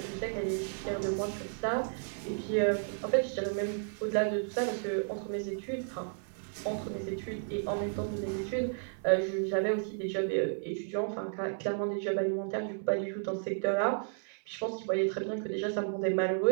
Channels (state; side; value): silent; left; 56 dB below the other